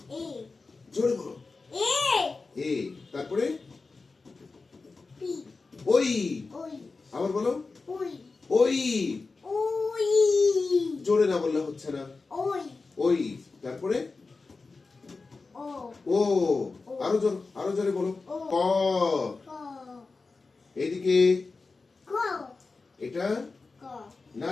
জোরে বলো। এ। তারপরে ওই। আবার বলো। ওই। জোরে না বললে হচ্ছে না। ওই। তারপরে ও। আরো জোরে বলো। ক। এইদিকে এটা না,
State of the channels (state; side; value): quieter; right; 4.0 dB